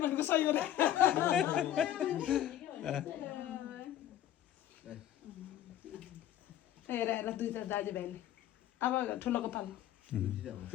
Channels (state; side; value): quieter; right; 11.8 dB